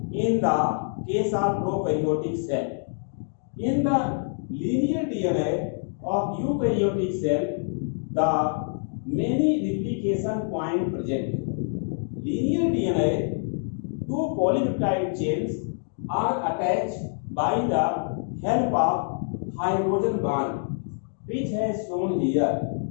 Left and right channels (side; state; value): right; silent; digital silence